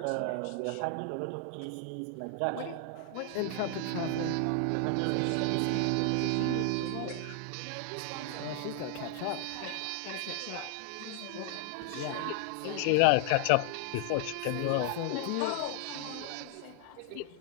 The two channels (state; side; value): different; both; correlation 0.00